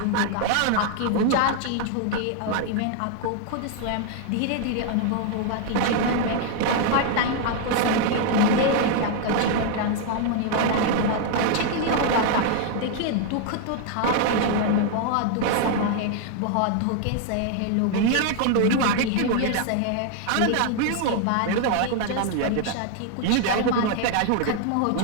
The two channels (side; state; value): both; different; correlation 0.00